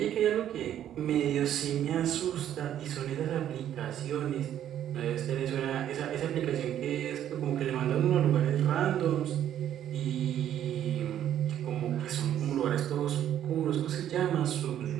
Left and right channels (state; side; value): quieter; left; 10.9 dB